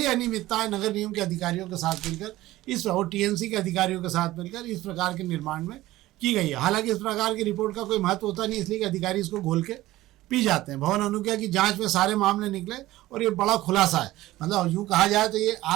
अनियमितताएं नगर निगम के अधिकारियों के साथ मिलकर और टीएमसी के अधिकारियों के साथ मिलकर इस प्रकार के निर्माण में की गई है। हालांकि इस प्रकार की रिपोर्ट का कोई महत्व होता नहीं, इसलिए कि अधिकारी इसको घोल के पी जाते हैं। भवन अनुज्ञा की जांच में सारे मामले निकले और ये बड़ा खुलासा है। मतलब यूँ कहा जाए तो ये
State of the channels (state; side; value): quieter; left; 16.7 dB